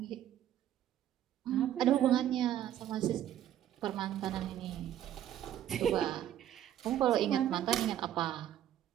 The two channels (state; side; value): quieter; left; 11.5 dB